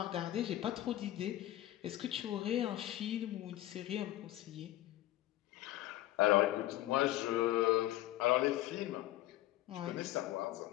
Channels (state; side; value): quieter; right; 15.0 dB